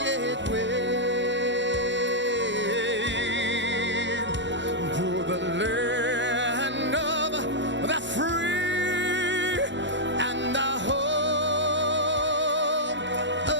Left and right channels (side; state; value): both; normal; correlation -0.07